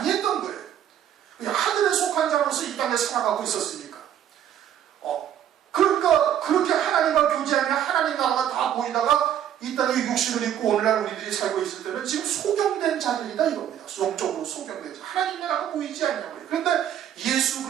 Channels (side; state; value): left; quieter; 10.2 dB